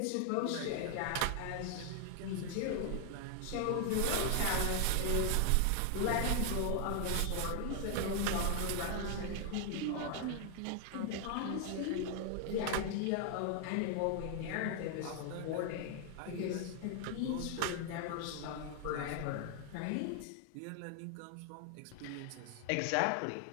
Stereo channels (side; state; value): both; different; correlation 0.00